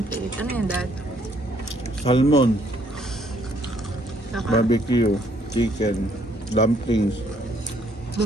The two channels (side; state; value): both; normal; correlation 0.67